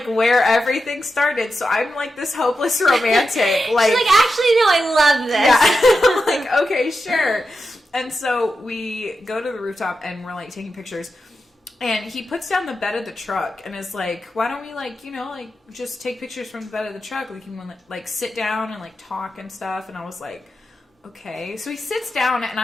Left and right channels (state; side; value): normal; both; correlation 0.89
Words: where everything started. So I'm like this hopeless romantic. Like, she's like, actually, no, I love this. Yeah. I'm like, okay, sure. And so we go to the rooftop and we're like taking pictures. And he puts down the bed of the truck and is like, why don't we like, just take pictures from the bed of the truck? We can like sit down and like talk and stuff. And I was like, okay. So he sits down and